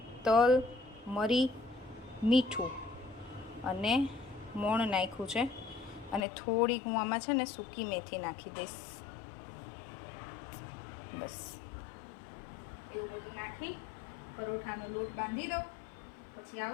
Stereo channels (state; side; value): drops out; right; at 6.2 s